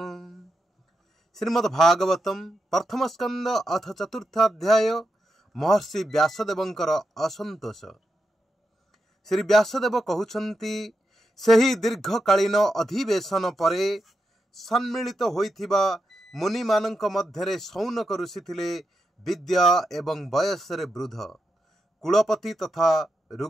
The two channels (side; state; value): both; normal; correlation 0.86